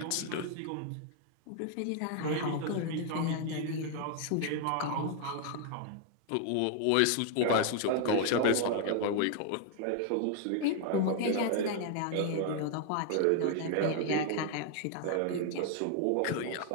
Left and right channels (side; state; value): both; different; correlation 0.00